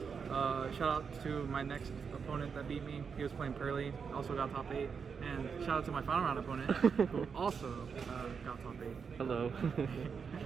Shout out to my next opponent that beat me. He was playing Pearly, also got top 8. And shout out to my final round opponent, who also got top 8. Hello.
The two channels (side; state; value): left; quieter; 6.1 dB